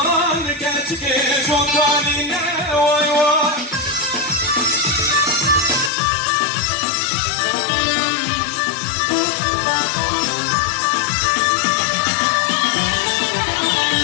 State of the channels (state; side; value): drops out; right; at 5.9 s